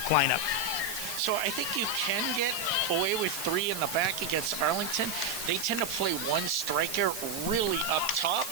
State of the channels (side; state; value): right; noise; hiss, 7 dB below the sound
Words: lineup. So I think you can get away with 3 in the back against Arlington. They tend to play one striker really up top,